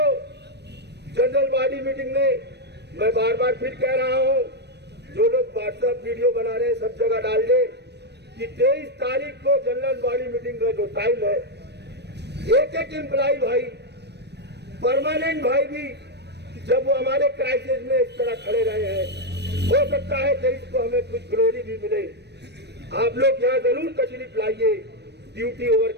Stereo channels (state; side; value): late; left; 0.49 ms